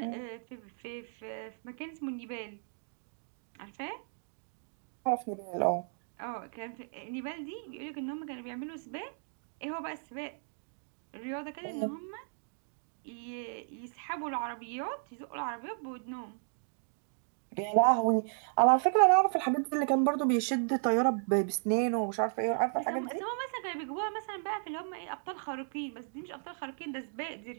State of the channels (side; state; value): left; silent; digital silence